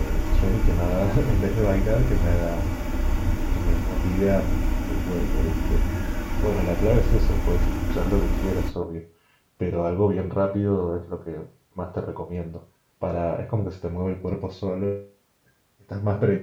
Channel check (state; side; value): identical; both; correlation 1.00